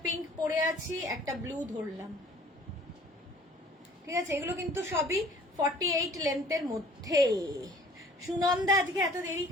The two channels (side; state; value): both; normal; correlation 0.53